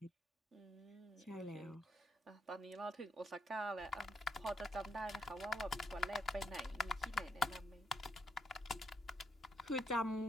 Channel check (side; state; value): both; normal; correlation 0.76